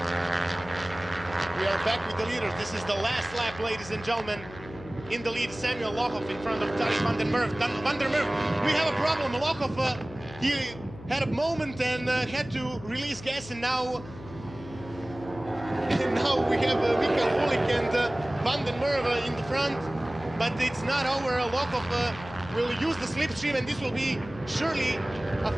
We are back with the leaders. This is the last lap, ladies and gentlemen. In the lead, Samuel Lochov in front of Tarik van den Merwe. Van der Merwe, we have a problem. Lochov, he had a moment and had to release gas, and now we have Michal Búlik and Van den Merwe in the front. But it's not over. Lochov will use the slipstream, and this will be surely a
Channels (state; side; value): noise; left; hum, 16 dB below the sound